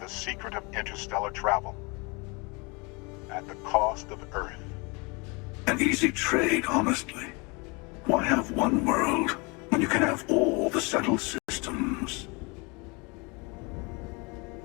the secret of interstellar travel at the cost of Earth. An easy trade, honestly. Why have one world when you can have all the settled systems?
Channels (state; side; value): quieter; right; 29.1 dB